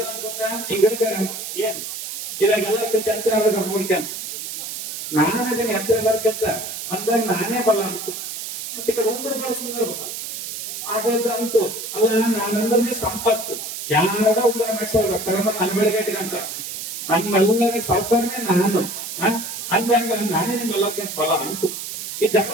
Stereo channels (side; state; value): right; noise; hiss, 7 dB below the sound